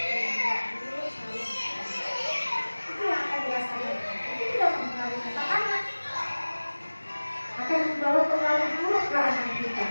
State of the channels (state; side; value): inverted; both; correlation -1.00